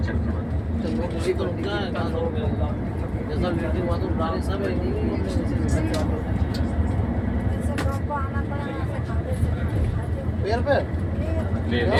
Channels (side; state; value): both; identical; correlation 1.00